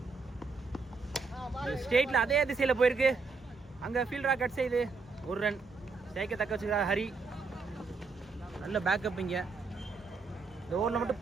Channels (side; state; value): left; quieter; 4.3 dB